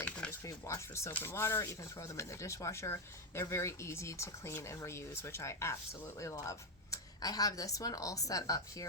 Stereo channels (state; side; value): normal; both; correlation 0.05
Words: can just be washed with soap and water. You can throw them in the dishwasher. They're very easy to clean and reuse, which I absolutely love. I have this one all set up